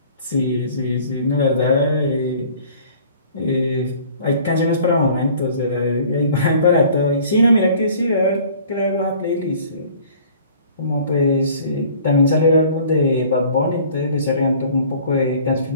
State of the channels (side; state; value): both; inverted; correlation -0.51